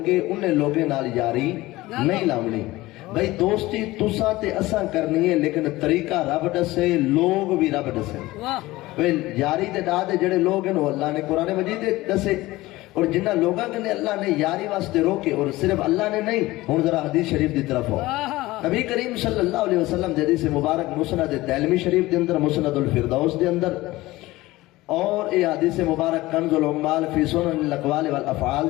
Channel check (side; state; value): right; quieter; 18.7 dB